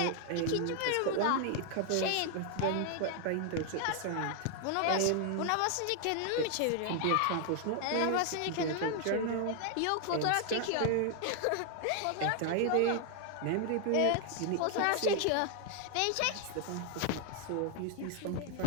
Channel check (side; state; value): both; different; correlation 0.00